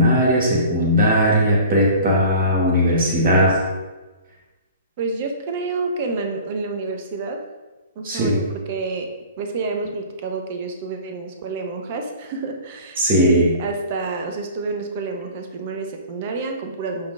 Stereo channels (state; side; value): inverted; both; correlation -0.42